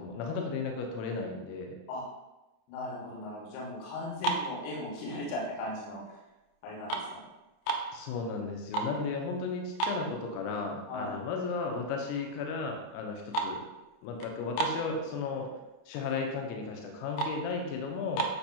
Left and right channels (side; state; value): right; late; 28 ms